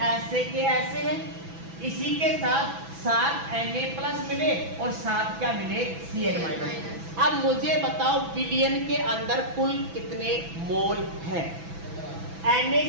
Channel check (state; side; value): late; left; 6.0 ms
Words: ऐसे के ऐसे हैं। इसी के साथ 7 Na प्लस मिले और 7 क्या मिले Cl माइनस। अब मुझे बताओ विलयन के अंदर कुल कितने मोल हैं।